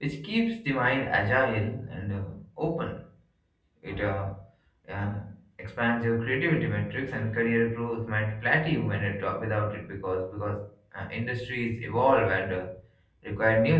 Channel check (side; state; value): both; identical; correlation 1.00